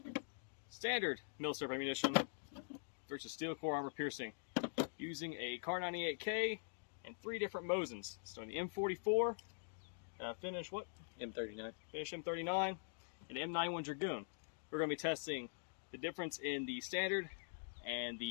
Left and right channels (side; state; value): right; silent; digital silence